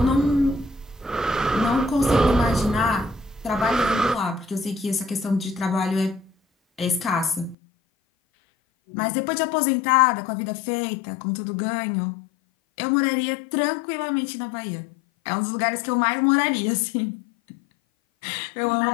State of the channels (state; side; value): drops out; right; at 7.6 s